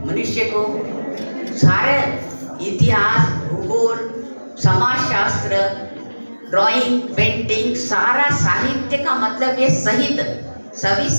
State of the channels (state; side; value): inverted; both; correlation -1.00